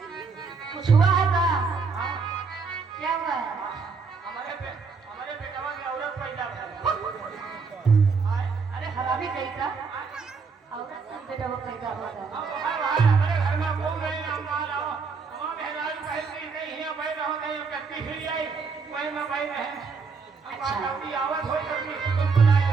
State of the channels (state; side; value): quieter; left; 5.0 dB